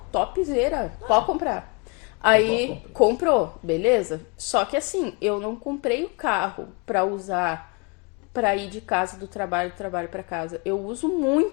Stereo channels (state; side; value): quieter; right; 32.0 dB